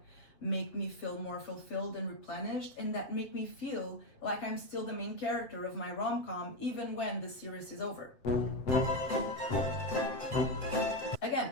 make me feel more fulfilled and replenished, and that make me feel like I'm still the main character of my rom-com even when the series is over. Again,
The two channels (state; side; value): late; right; 8.0 ms